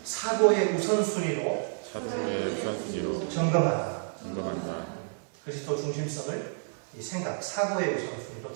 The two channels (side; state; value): left; silent; digital silence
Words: 사고의 우선순위로 점검한다. 그리스도 중심성을 이 생각, 사고의 우선순위로